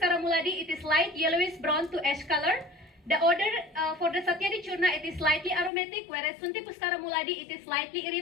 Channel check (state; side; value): drops out; right; at 5.7 s